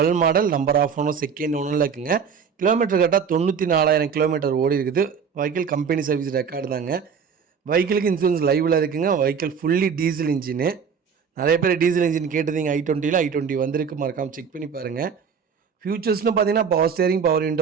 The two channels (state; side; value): quieter; left; 6.5 dB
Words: model, number of owner second ஓனரில் இருக்குங்க. கிலோமீட்டர் கரெக்டாக 94,000 கிலோமீட்டர் ஓடி இருக்குது. வெஹிக்கிள் கம்பெனி சர்வீஸ் ரெக்கார்டு தாங்க. வெஹிக்கிளுக்கு இன்சூரன்ஸ் லைவில் இருக்குங்க. Vehicle fully diesel engine. நிறைய பேர் டீசல் இன்ஜின் கேட்டதிங்க. i20 வந்திருக்கு, மறக்காமல் செக் பண்ணி பாருங்கள். ஃபியூச்சர்ஸ்னு பார்த்தீங்கன்னா பவர் ஸ்டேரிங், பவர்